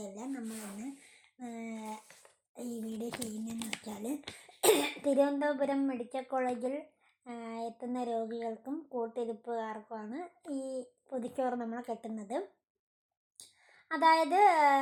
നമ്മളിന്ന് ഈ വീഡിയോ ചെയ്യുന്നതെന്ന് വെച്ചാൽ തിരുവനന്തപുരം മെഡിക്കൽ കോളേജിൽ എത്തുന്ന രോഗികൾക്കും കൂട്ടിരിപ്പുകാർക്കുമാണ് ഈ പൊതിച്ചോറ് നമ്മൾ കെട്ടുന്നത്. അതായത്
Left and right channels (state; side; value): identical; both; correlation 1.00